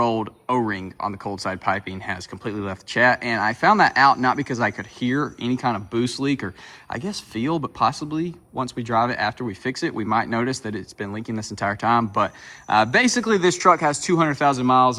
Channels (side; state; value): both; identical; correlation 1.00